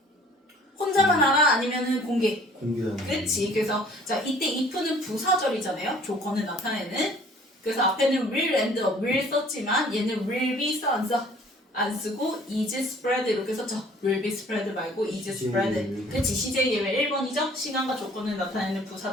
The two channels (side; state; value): both; normal; correlation 0.54